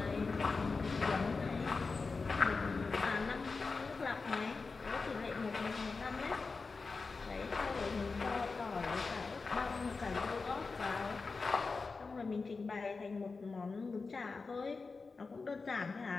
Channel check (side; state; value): right; quieter; 4.3 dB